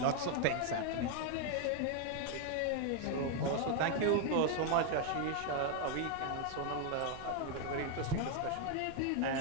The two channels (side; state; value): both; different; correlation 0.00